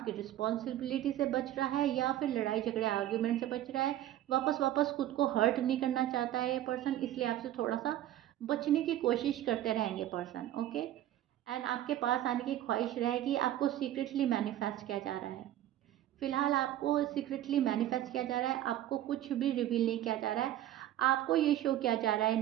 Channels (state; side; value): quieter; left; 13.0 dB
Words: रिस्पॉन्सिबिलिटी से बच रहा है, या फिर लड़ाई झगड़े आर्ग्यूमेंट से बच रहा है। वापस वापस खुद को हर्ट नहीं करना चाहता है ये पर्सन, इसलिए आपसे थोड़ा सा बचने की कोशिश करते रहेंगे पर्सन। ओके, एंड आपके पास आने की ख्वाहिश रहेगी। आपको सीक्रेटली मैनिफेस्ट किया जा रहा है। फिलहाल आपको सीक्रेटली मैनिफेस्ट किया जा रहा है, आपको कुछ भी रिवील नहीं किया जा रहा है। आपको ये शो किया जा रहा है